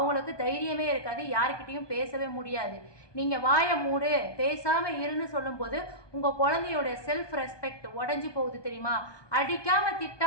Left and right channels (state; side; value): late; right; 1.2 ms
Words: தைரியமே இருக்காது, யாருக்கிட்டையும் பேசவே முடியாது. நீங்கள் வாயை மூடு பேசாமல் இருன்னு சொல்லும்போது உங்கள் குழந்தையோட செல்ஃப் ரெஸ்பெக்ட் உடஞ்சி போகுது தெரியுமா? அடிக்காமல்